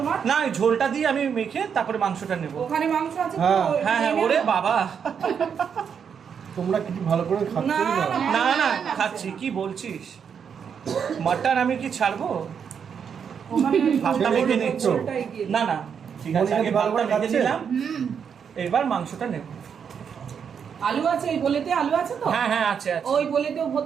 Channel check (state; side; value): quieter; left; 7.2 dB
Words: না এই ঝোলটা দিয়ে আমি মেখে তারপরে মাংসটা নেব। ওখানে মাংস আছে তো? হ্যাঁ। হ্যাঁ হ্যাঁ, নিয়ে ওরে নাও। বাবা। তোমরা কি ভালো করে খাচ্ছ না, না? না, না না খাচ্ছি, কি বলছিস? মাটন আমি কি ছাড়বো? ওখানে ওই ভাতটা ঝোলটা মেখে নিচ্ছ? ঝোলটা এগিয়ে না না ঠিক আছে, মনিকা আগে কি ভালো ভাতটা করে মেখে খাচ্ছে? নিলাম, হুম। এবার মাংসটা নেব। আলু আছে, এই বলেতে আলু আছে তো? হ্যাঁ হ্যাঁ আছে আছে। ওই বলেতেও